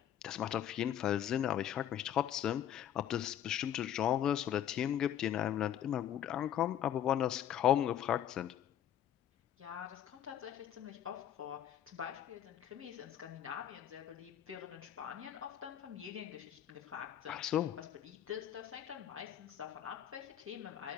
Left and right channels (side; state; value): right; quieter; 10.5 dB